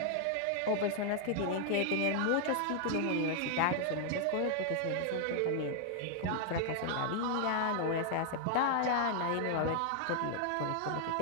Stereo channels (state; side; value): different; both; correlation 0.00